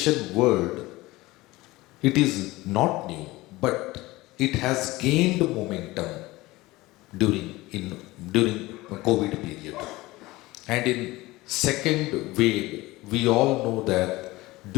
word, it is not new, but it has gained momentum during COVID period. And in second wave, we all know that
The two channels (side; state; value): right; quieter; 19.9 dB